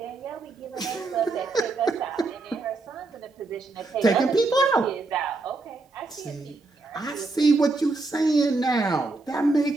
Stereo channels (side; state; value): left; quieter; 3.5 dB